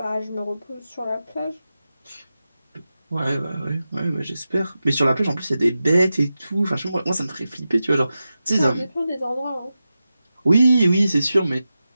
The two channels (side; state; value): both; inverted; correlation -0.92